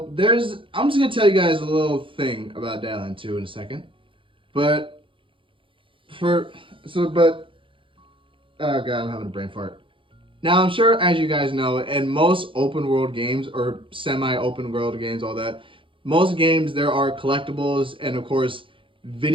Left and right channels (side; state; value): left; late; 0.25 ms